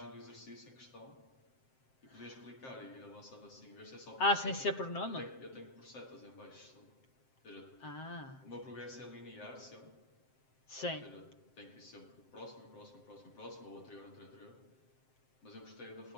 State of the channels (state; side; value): late; right; 7.6 ms